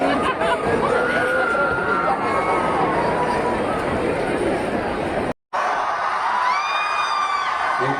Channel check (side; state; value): both; identical; correlation 1.00